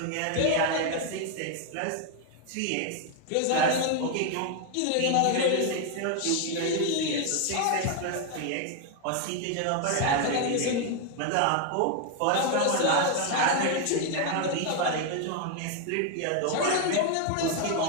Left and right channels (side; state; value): both; different; correlation 0.01